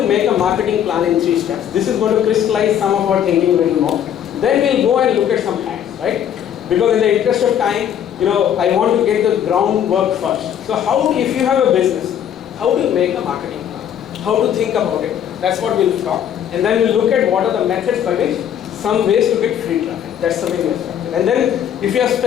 make a marketing plan in 3 steps. This is going to crystallize some of our thinking a little more. Then we'll go and look at some hacks, right? Because in the interest of time, I want to get the groundwork first. So if you have a business, how do you make a marketing plan? How to think about it? That's what we'll talk. And then we'll look at what are the methods by which some ways to get free traffic. That's the way we'll start. And then if you have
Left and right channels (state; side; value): quieter; right; 9.6 dB